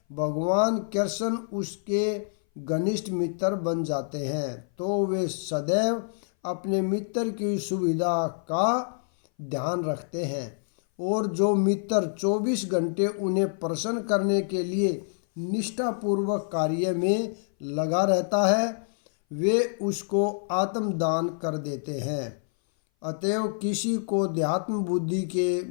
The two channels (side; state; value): right; silent; 58 dB below the other